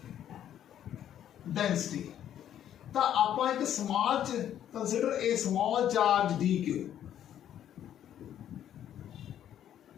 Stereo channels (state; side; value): quieter; right; 10.6 dB